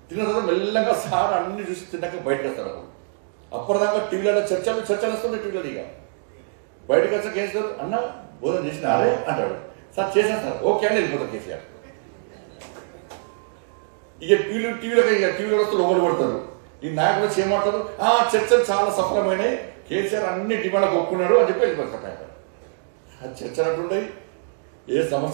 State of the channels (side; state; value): left; silent; digital silence